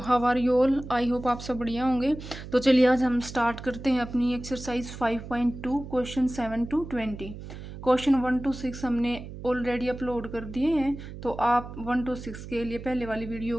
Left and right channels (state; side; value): noise; right; hum, 12 dB below the sound